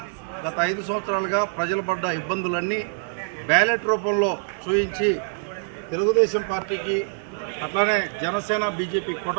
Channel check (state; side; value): silent; left; 62 dB below the other